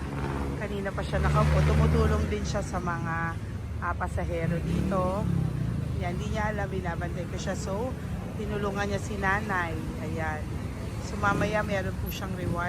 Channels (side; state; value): both; identical; correlation 1.00